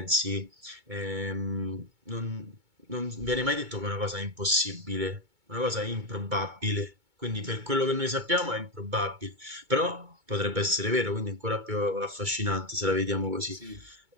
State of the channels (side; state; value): left; late; 2.2 ms